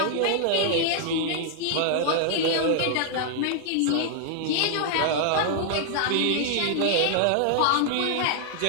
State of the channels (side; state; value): both; different; correlation 0.00